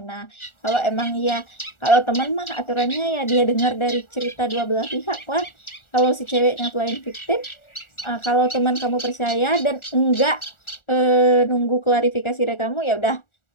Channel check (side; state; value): right; late; 1.4 ms